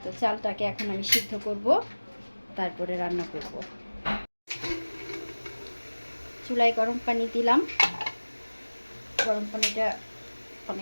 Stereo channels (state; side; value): inverted; both; correlation -1.00